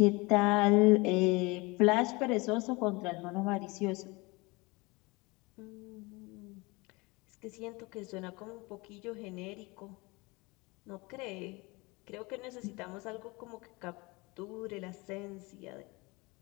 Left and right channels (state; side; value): quieter; right; 25.2 dB